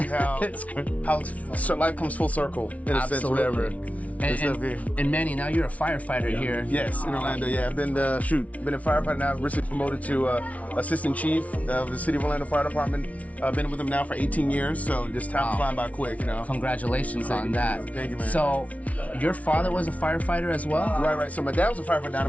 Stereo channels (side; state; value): right; late; 0.067 ms